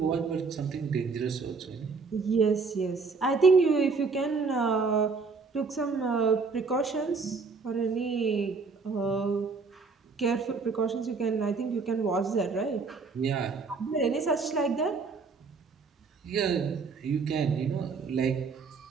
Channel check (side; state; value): left; quieter; 4.6 dB